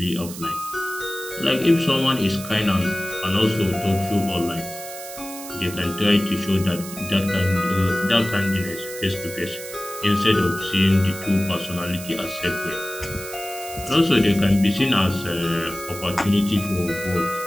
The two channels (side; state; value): right; noise; hiss, 12 dB below the sound